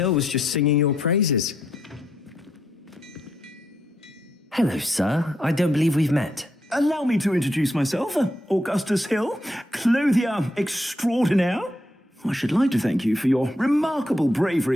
was just singing your praises. Hello, sir. I don't believe we've met. Allow me to introduce myself, Augustus Hill, clothier extraordinaire. I should like to thank you for your remarkable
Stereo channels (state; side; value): normal; both; correlation 0.78